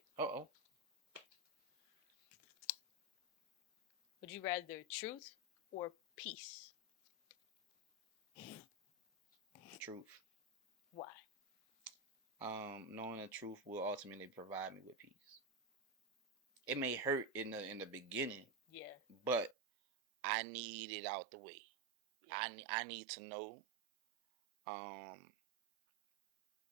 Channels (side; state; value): left; drops out; at 19.6 s